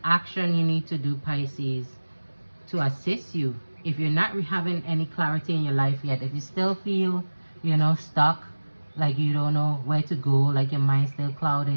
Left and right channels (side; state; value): both; inverted; correlation -1.00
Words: action you need to do, Pisces, to assist you. If you're not having any clarity in your life yet, if you still feel, stuck, like you don't know where to go, like your mind's still